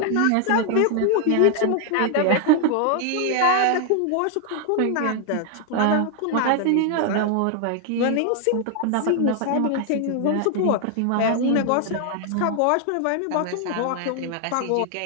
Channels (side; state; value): both; different; correlation 0.00